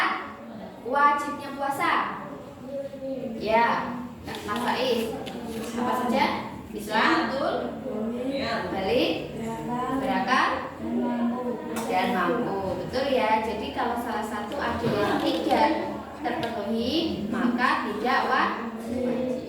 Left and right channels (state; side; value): identical; both; correlation 1.00